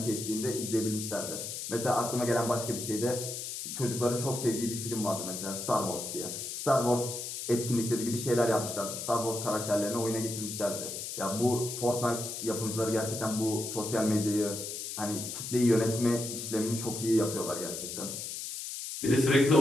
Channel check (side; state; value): left; noise; hiss, 6 dB below the sound